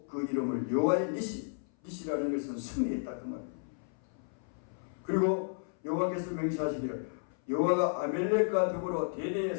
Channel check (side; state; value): right; silent; 56 dB below the other